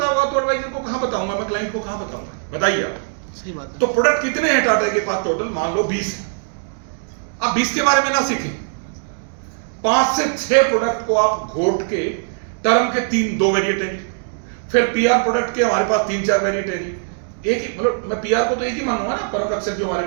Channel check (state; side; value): silent; left; digital silence